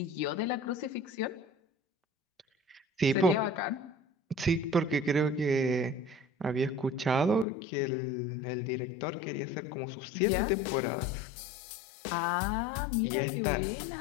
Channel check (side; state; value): right; drops out; at 7.5 s